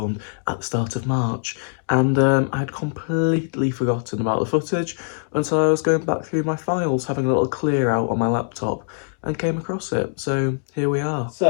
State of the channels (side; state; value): right; silent; digital silence